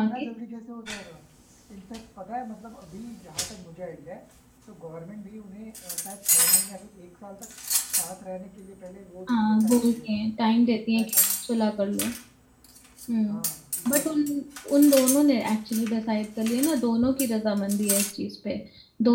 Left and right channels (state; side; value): identical; both; correlation 1.00